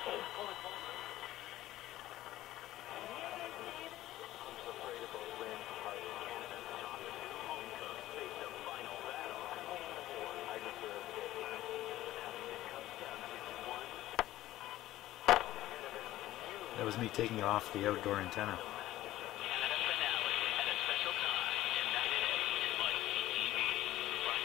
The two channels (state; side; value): quieter; right; 15.1 dB